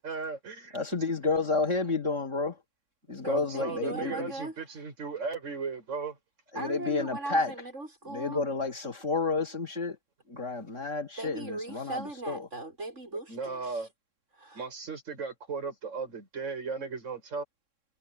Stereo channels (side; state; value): left; late; 3.6 ms